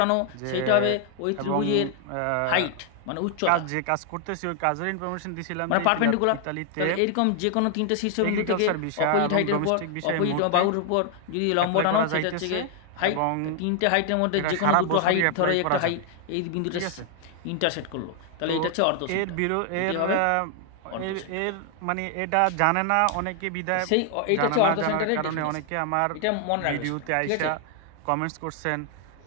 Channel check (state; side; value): different; both; correlation 0.00